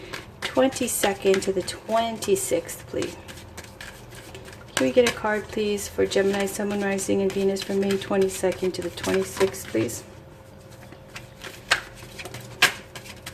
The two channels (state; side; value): identical; both; correlation 1.00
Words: 22nd to the 26th, please. Can we get a card, please, for Gemini, Sun, Moon, Rising, and Venus from May 22nd to the 26th, please?